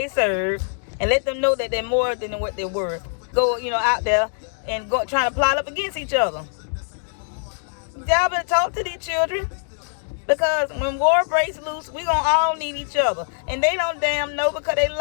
serve, and let them know that they're more than what they're worth. Go, you know, out there and go trying to plot up against each other. Y'all better talk to these children. Because when war breaks loose, we gonna all need each other. And they don't damn know because they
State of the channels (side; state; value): right; silent; digital silence